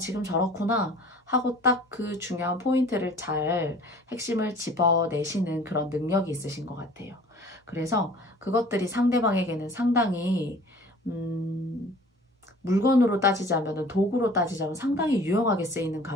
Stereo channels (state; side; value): normal; both; correlation 0.48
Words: 저렇구나 하고 딱 그 중요한 포인트를 잘 핵심을 집어내시는 그런 능력이 있으신 것 같아요. 그래서 그것들이 상대방에게는 상당히 물건으로 따지자면, 도구로 따지자면 상당히 유용하게 쓰이는